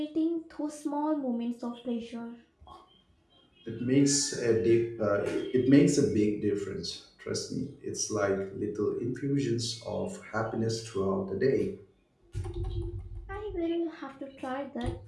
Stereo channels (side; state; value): both; identical; correlation 1.00